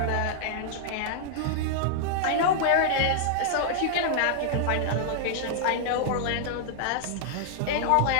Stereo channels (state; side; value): different; both; correlation -0.01